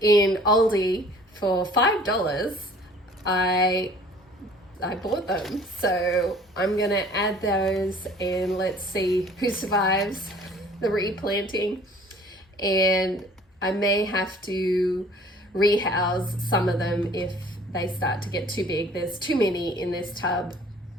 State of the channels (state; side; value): normal; both; correlation 0.52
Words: Aldi for $5, I bought them. So I'm gonna add those and let's see who survives the replanting. And I may have to rehouse some of them if they start to get too big. There's too many in this tub.